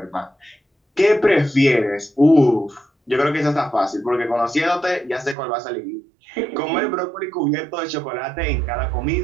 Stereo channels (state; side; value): drops out; left; at 5.4 s